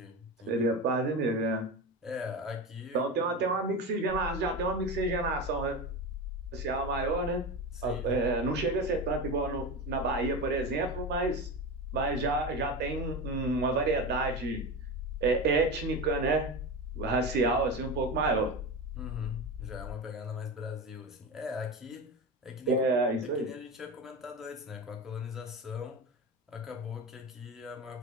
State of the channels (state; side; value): normal; both; correlation 0.23